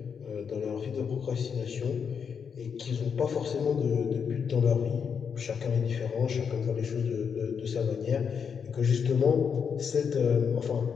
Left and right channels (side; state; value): right; quieter; 6.7 dB